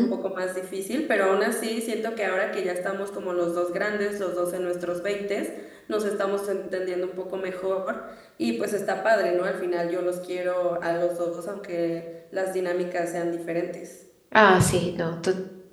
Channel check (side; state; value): both; identical; correlation 1.00